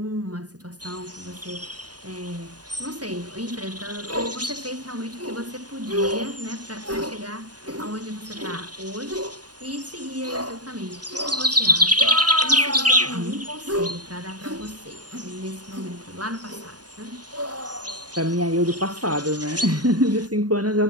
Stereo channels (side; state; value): left; late; 0.69 ms